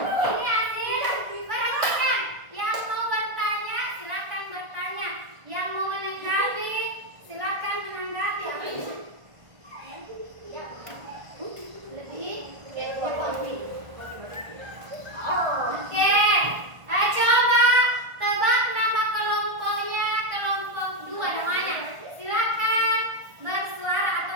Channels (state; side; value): late; left; 1.5 ms